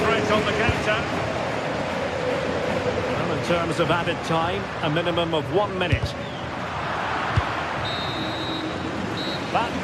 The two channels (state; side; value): identical; both; correlation 1.00